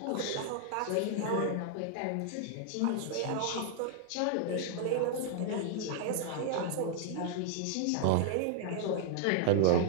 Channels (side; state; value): both; different; correlation 0.00